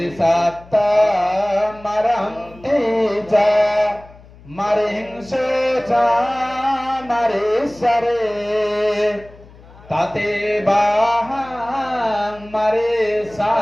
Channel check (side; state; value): left; noise; hum, 23 dB below the sound